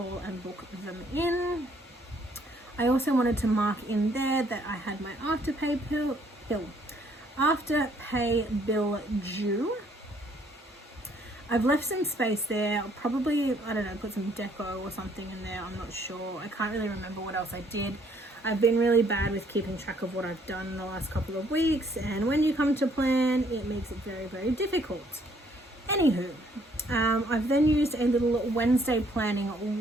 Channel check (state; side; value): normal; both; correlation 0.65